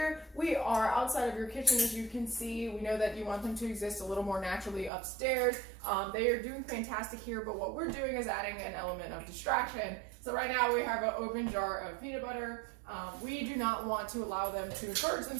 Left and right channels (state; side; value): drops out; left; at 4.9 s